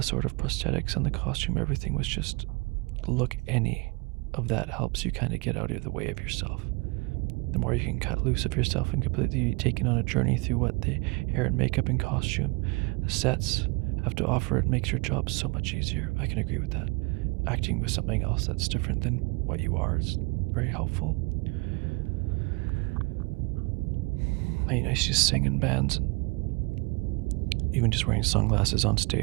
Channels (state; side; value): quieter; left; 28.2 dB